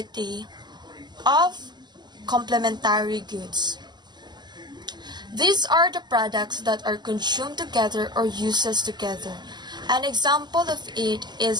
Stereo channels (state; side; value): late; left; 0.21 ms